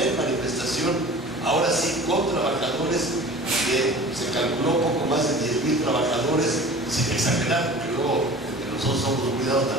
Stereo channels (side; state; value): both; normal; correlation 0.41